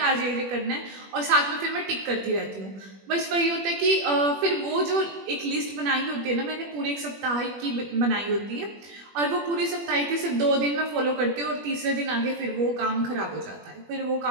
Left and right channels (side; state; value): left; late; 21 ms